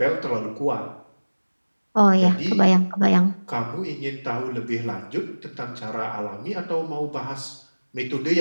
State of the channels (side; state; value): both; inverted; correlation -1.00